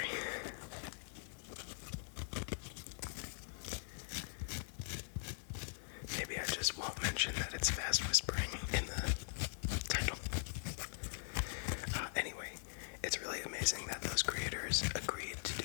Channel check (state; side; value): silent; right; digital silence